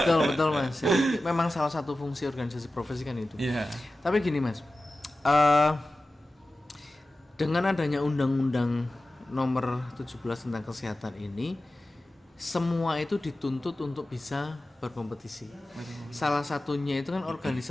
Mas. Jadi, memang salah satu fungsi organisasi profesi kan itu. Tapi gini Mas, dengan adanya Undang-Undang Nomor 17 tentang kesehatan ini, semua itu dituntut untuk bisa berkompetisi. Salah satunya itu kan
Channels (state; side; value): normal; both; correlation 0.95